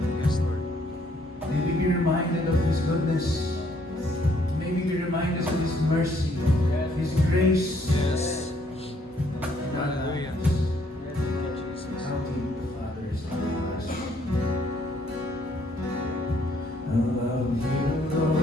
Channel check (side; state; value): both; normal; correlation 0.67